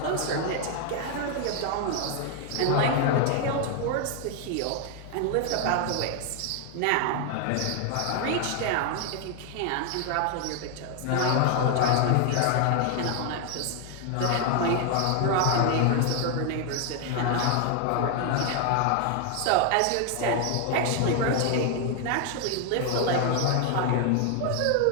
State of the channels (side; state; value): both; different; correlation 0.00